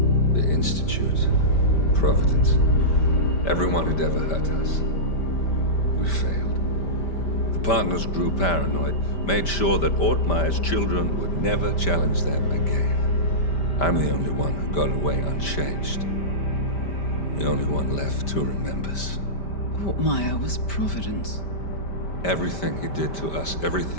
The Institute, Providence, everyone who'd ever hurt us. We failed. The partners grew paranoid, made sure that Ortmeyer's children would never challenge them again. I'm the only one who got away unchanged. The only one left who remembers. Ortmeyer was Providence. Everything he did to us,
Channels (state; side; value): late; right; 5.1 ms